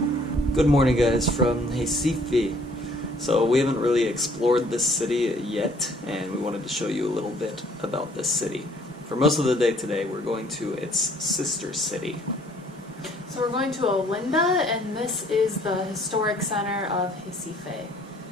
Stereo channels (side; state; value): both; normal; correlation 0.60